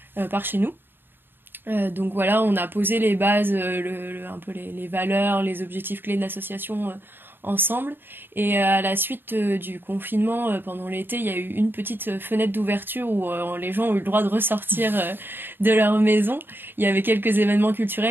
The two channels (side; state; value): left; late; 0.098 ms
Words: par chez nous. Donc voilà, on a posé les bases, un peu les valeurs, les objectifs clés de l'association ensemble. Et à la suite du confinement, pendant l'été, il y a eu une petite fenêtre d'ouverture où les gens ont eu le droit de ressortir de leur maison. Il y avait quelques événements